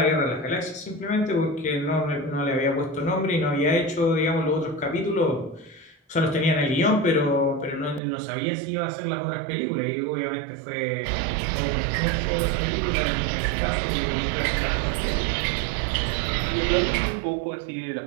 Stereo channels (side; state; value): left; drops out; at 8.0 s